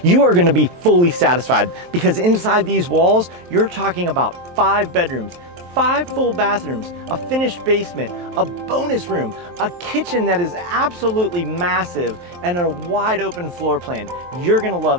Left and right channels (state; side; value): late; left; 23 ms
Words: you are going to be fully satisfied because inside these walls, you're talking about 5 bedrooms, 5 full bathrooms, a finished basement, a bonus room, a kitchen that is absolutely massive, and a wide open floor plan. You're gonna love